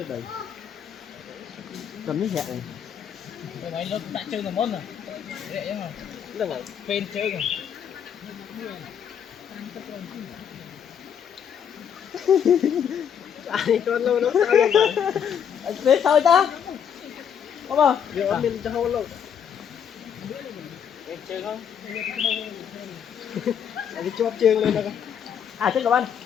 đấy cầm miếng hẹn này mày nó đã chơi một món rồi dễ mà là ngày phên chơi rồi anh cho lâu nó sao luôn mà thế thôi ta không không giờ mình cho lâu lâu phên chơi không anh cho chương lên đâu à chết các anh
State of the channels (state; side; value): quieter; right; 8.3 dB